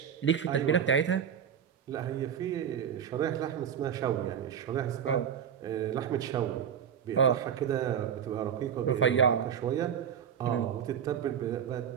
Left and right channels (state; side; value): quieter; left; 8.2 dB